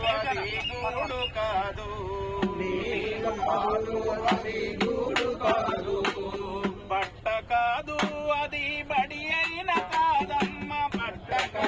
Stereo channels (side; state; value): both; identical; correlation 1.00